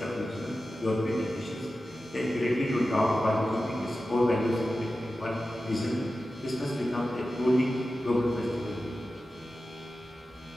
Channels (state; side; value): normal; both; correlation 0.93